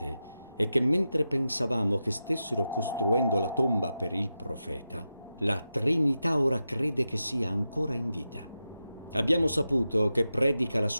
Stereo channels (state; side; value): inverted; both; correlation -0.90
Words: è che mentre pensavamo che stessero costruendo la tomba per il profeta, la Trinità ora crede che sia ancora in vita. Abbiamo saputo che predica la